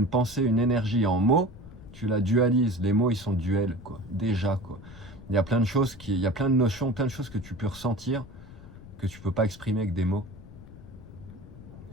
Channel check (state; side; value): noise; left; rumble, 17 dB below the sound